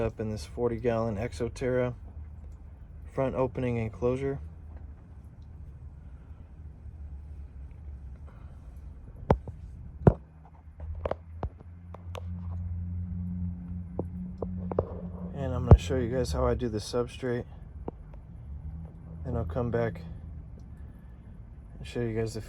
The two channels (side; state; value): both; identical; correlation 1.00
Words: in this 40-gallon Enclosure front opening enclosure. And I'm going to show you guys how I do the substrate. Then I'll come back and show you guys the